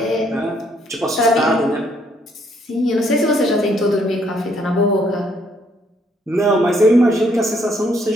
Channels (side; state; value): both; normal; correlation 0.69